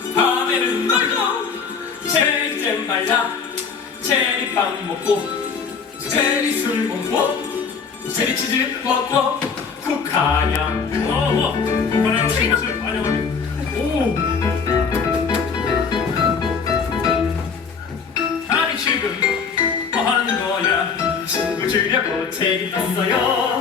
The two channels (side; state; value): right; quieter; 5.7 dB